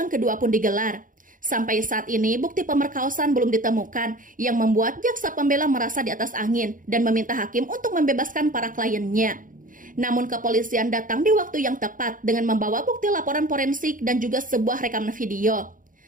kedua pun digelar. Sampai saat ini, bukti pemerkosaan belum ditemukan yang membuat jaksa pembela merasa di atas angin dan meminta hakim untuk membebaskan para kliennya. Namun kepolisian datang di waktu yang tepat dengan membawa bukti laporan forensik dan juga sebuah rekaman video.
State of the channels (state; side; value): late; left; 0.39 ms